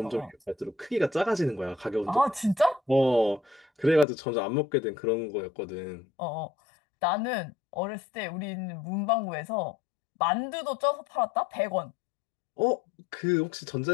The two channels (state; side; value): drops out; right; at 4.0 s